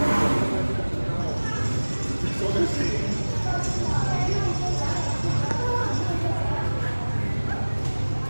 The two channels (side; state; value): both; inverted; correlation -1.00